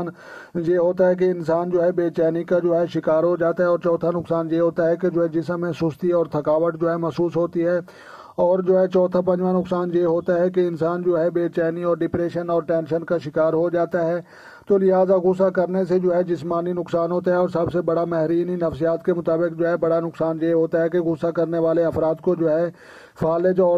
یہ ہوتا ہے کہ انسان جو ہے بے چینی کا جو ہے شکار ہو جاتا ہے، اور چوتھا نقصان یہ ہوتا ہے کہ جو ہے جسم میں سستی اور تھکاوٹ جو ہے محسوس ہوتی ہے، اور جو ہے چوتھا پنجواں نقصان یہ ہوتا ہے کہ انسان جو ہے بے چینی اور ڈپریشن اور ٹینشن کا شکار ہو جاتا ہے۔ تو لہٰذا غصہ کرنے سے جو ہے جسمانی نقصان ہوتا ہے، اور سب سے بڑا ماہرین نفسیات کے مطابق جو ہے بڑا نقصان یہ ہوتا ہے کہ غصہ کرنے والے افراد کو جو ہے فالج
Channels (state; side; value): identical; both; correlation 1.00